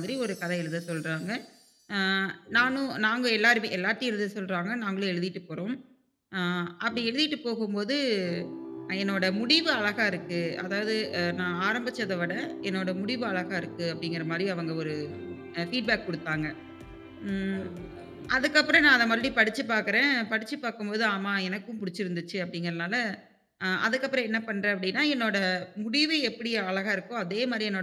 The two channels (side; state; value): both; identical; correlation 1.00